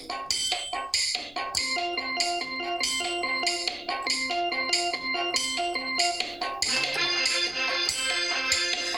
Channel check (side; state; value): left; noise; rumble, 25 dB below the sound